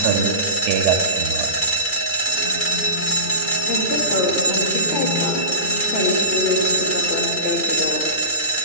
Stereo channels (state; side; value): late; right; 2.4 ms